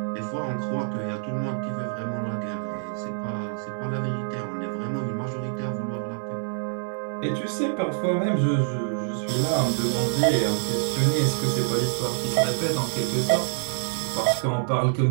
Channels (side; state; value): left; silent; digital silence